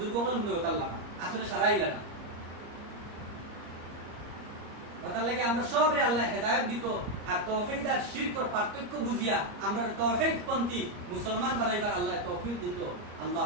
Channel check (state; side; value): late; left; 34 ms